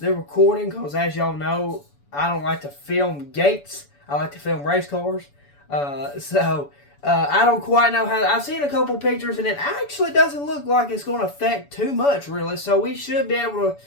recording, because as y'all know, I don't like to film gates. I like to film race cars. So I don't quite know how. I've seen a couple pictures, and it actually doesn't look like it's going to affect too much, really. So we should be able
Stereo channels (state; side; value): late; right; 7.0 ms